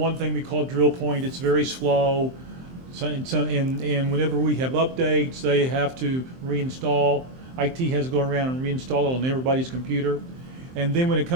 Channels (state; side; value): late; left; 23 ms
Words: thing we call drill point, it's very slow. And whenever we have updates, they have to reinstall. IT has to go around and reinstall it on everybody's computer. And then when it